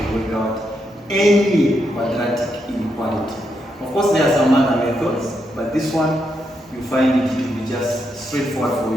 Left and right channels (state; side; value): normal; both; correlation 0.81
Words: work out any quadratic inequality. Of course, there are some other methods, but this one you find it to be just straightforward for